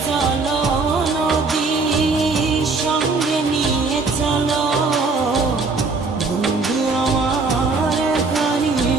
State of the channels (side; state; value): left; quieter; 4.0 dB